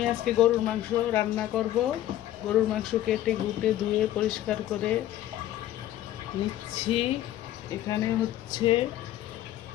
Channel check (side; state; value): right; quieter; 13.3 dB